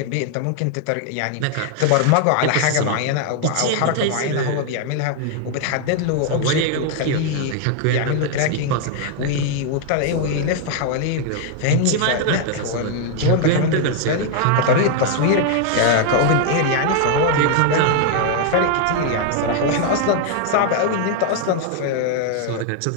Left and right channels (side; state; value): both; different; correlation 0.00